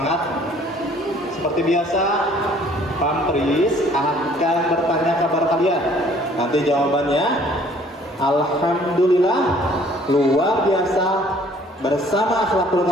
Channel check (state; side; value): normal; both; correlation 0.57